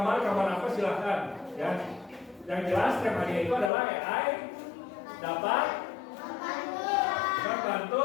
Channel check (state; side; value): drops out; right; at 3.7 s